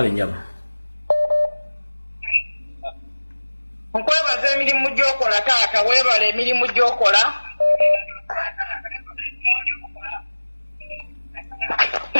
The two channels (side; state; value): both; inverted; correlation -1.00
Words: nyama. Nkwebaza emirimu gy'okola taata weebala emirimu gy'okola.